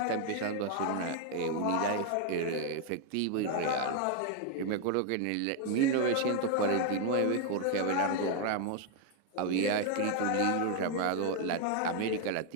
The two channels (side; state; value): both; different; correlation 0.01